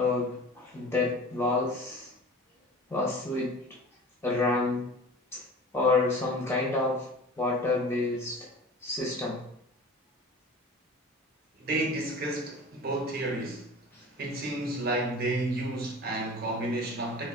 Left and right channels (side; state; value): both; normal; correlation 0.39